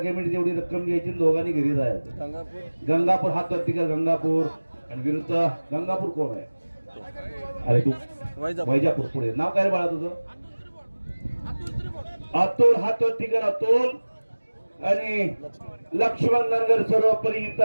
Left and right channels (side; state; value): both; inverted; correlation -1.00